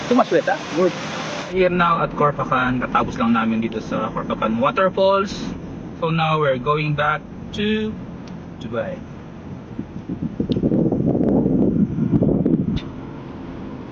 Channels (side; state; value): both; identical; correlation 1.00